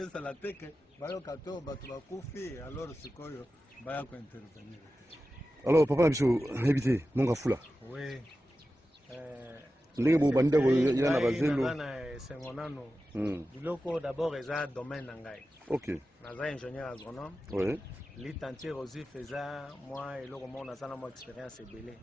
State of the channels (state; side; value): normal; both; correlation 0.93